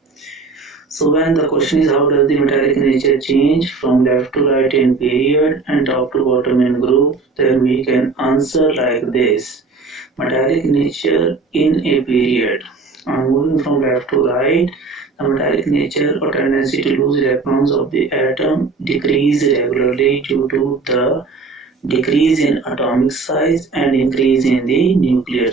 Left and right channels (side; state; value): left; quieter; 4.3 dB